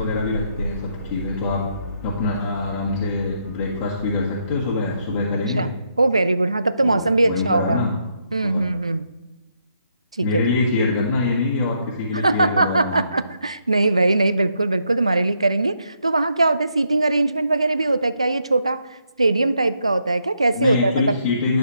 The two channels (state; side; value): inverted; both; correlation -0.76